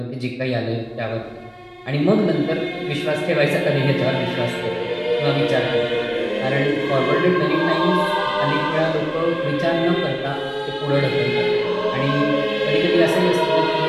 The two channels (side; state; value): both; identical; correlation 1.00